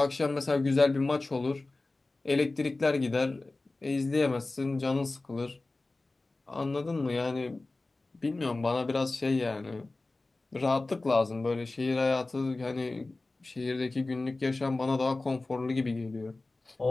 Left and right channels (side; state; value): right; quieter; 3.2 dB